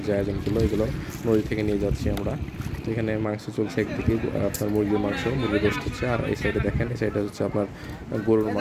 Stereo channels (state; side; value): identical; both; correlation 1.00